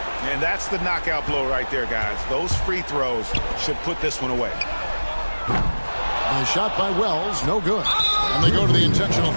And that's the knockout blow right there, guys. Those free throws should put this one away. And a shot by Wells, no good. And they go to the intentional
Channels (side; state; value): both; inverted; correlation -1.00